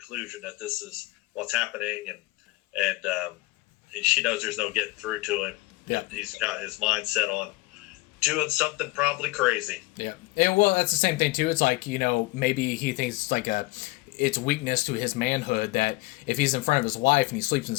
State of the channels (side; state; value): right; quieter; 21.6 dB